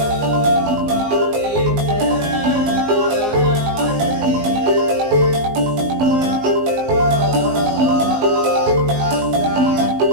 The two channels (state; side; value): late; left; 19 ms